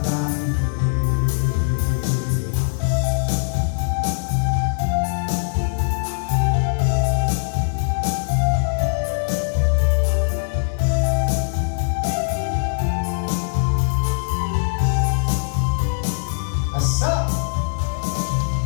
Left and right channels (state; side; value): silent; right; digital silence